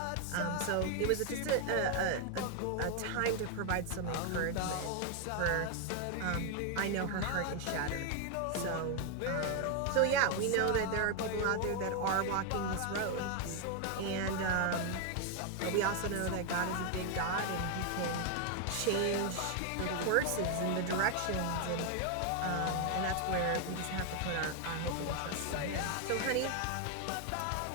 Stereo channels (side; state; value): both; different; correlation 0.01